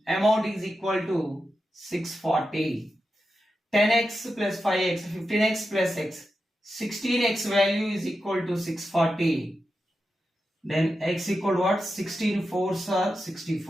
amount is equal to 640. 10x plus 5x, 15x plus x, 16x value is equal to 640. Then x equal to what? 16 4s are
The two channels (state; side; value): normal; both; correlation 0.89